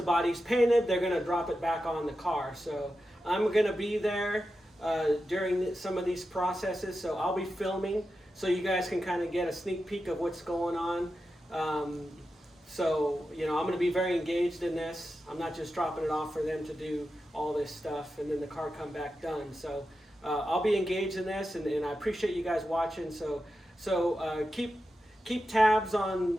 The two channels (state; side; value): normal; both; correlation 0.90